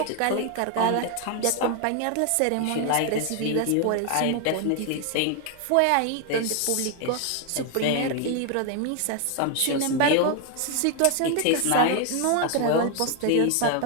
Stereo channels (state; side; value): different; both; correlation 0.01